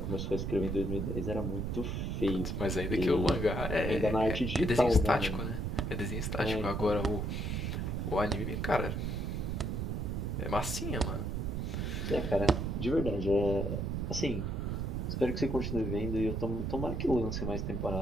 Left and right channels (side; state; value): right; noise; rumble, 1 dB below the sound